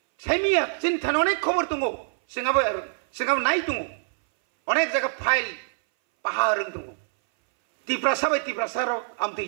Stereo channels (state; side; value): silent; left; 60 dB below the other